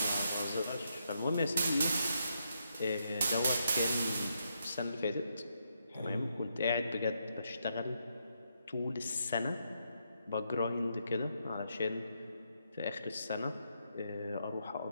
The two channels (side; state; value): both; inverted; correlation -0.79